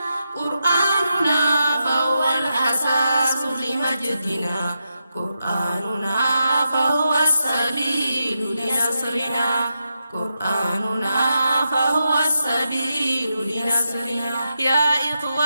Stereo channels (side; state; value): both; inverted; correlation -0.86